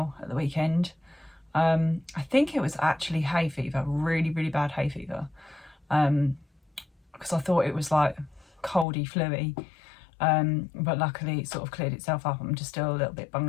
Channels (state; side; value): drops out; right; at 8.8 s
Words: at the weekend. I think it was actually hay fever, really bad hay fever, because I thought it was like coldy fluey, but luckily it sort of cleared itself up. I'm just still a little bit